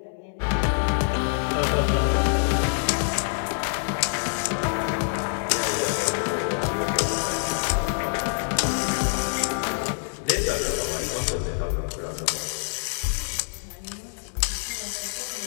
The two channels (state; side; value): silent; right; digital silence